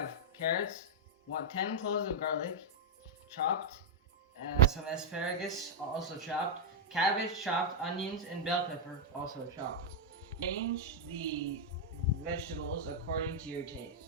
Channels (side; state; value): both; normal; correlation -0.04